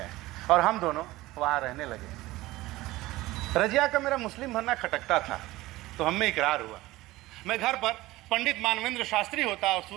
और हम दोनों वहाँ रहने लगे। रजिया का मेरा मुस्लिम बनना खटकता था, तो हम में इकरार हुआ। मैं घर पर पंडित मानवेंद्र शास्त्री होता और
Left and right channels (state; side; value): quieter; left; 18.3 dB